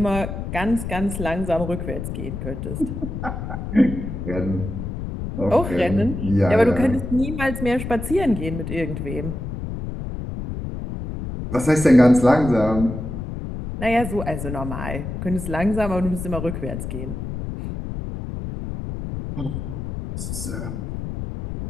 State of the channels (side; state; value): left; noise; rumble, 6 dB below the sound